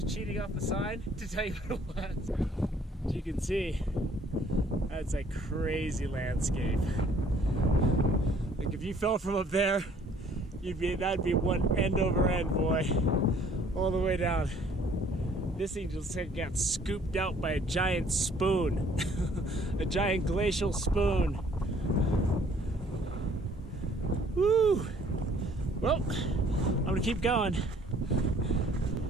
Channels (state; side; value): normal; both; correlation 0.59